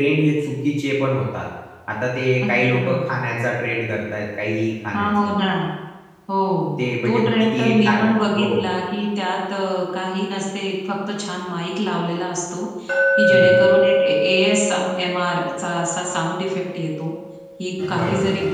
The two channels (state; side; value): identical; both; correlation 1.00